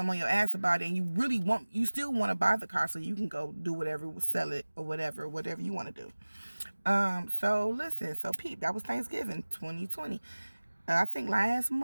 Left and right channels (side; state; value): both; inverted; correlation -1.00